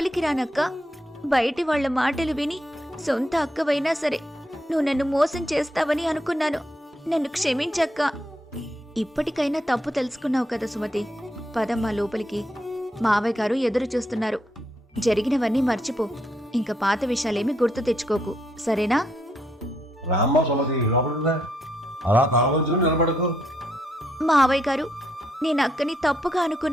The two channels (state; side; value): normal; both; correlation 0.76